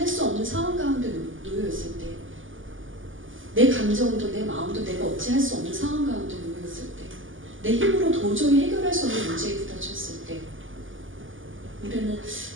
수 없는 상황 가운데 놓여있을 때, 내 감정도 내 마음도 내가 어찌 할 수 없는 상황 가운데 놓여있을 때, 내 힘으로 도저히 해결할 수 없는 문제에 부딪혔을 때, 우리는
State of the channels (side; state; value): left; late; 0.57 ms